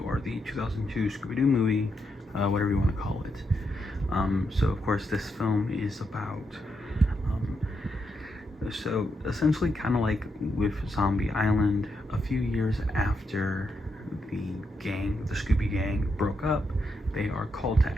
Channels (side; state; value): both; normal; correlation 0.82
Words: or the 2002 Scooby-Doo movie, whatever you want to call it. So of course this film is about, um, so essentially kind of like with Zombie Island, a few years after the gang, the Scooby Gang, broke up, they are called to